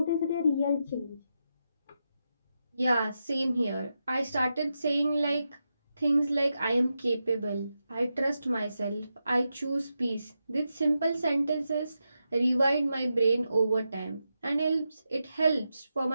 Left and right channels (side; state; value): both; inverted; correlation -0.88